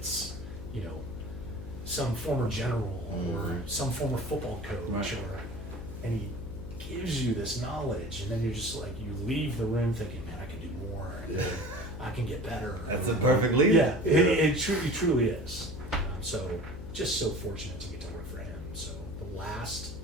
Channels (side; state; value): left; noise; hum, 10 dB below the sound